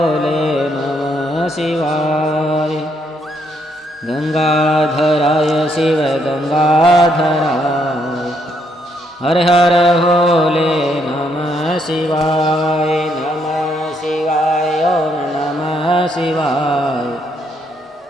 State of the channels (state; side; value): normal; both; correlation 0.73